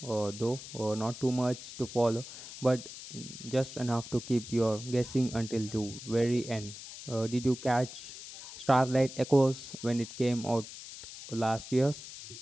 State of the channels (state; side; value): noise; left; hiss, 13 dB below the sound